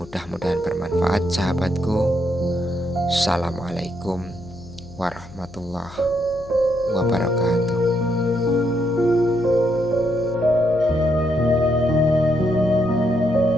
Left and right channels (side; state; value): left; noise; hum, 20 dB below the sound